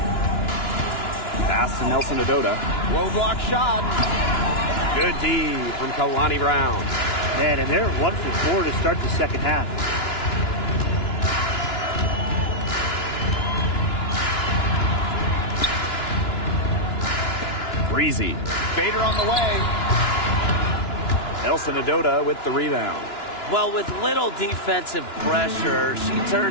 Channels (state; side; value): late; right; 2.9 ms